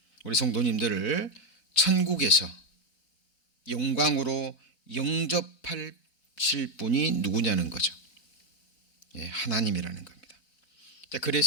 우리 성도님들을 천국에서 영광으로 영접하실 분이 누구냐는 거죠. 예, 하나님이라는 겁니다.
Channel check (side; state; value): right; late; 4.1 ms